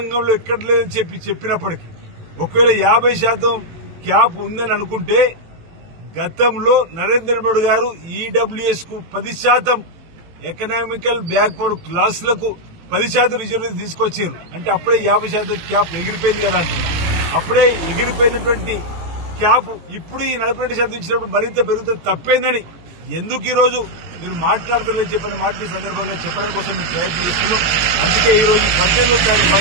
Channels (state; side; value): late; left; 18 ms